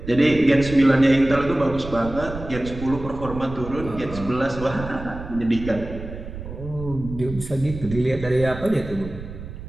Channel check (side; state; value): right; noise; rumble, 11 dB below the sound